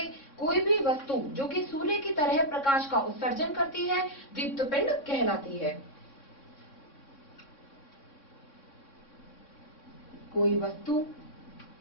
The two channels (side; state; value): right; late; 3.6 ms